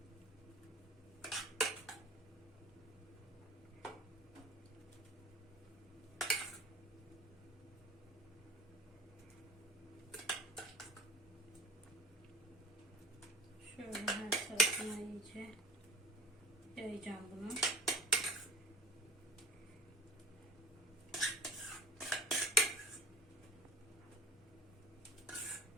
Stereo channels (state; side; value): normal; both; correlation 0.36